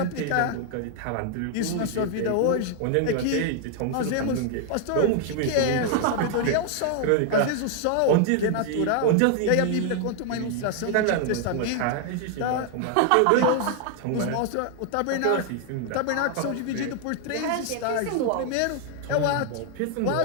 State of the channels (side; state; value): both; different; correlation 0.00